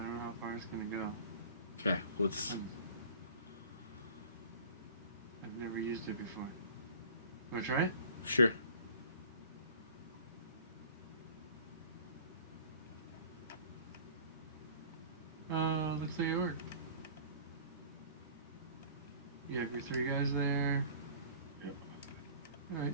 don't know how far it's going to go. Okay, let's... I've never used it before. Want to try it? Sure. Looks like it worked. You have your 3 guys there. Yep. Alright,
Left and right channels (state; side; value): inverted; both; correlation -0.45